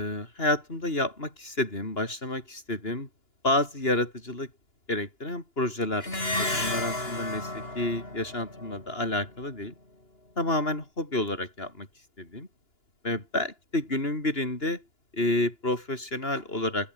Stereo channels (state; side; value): late; right; 2.9 ms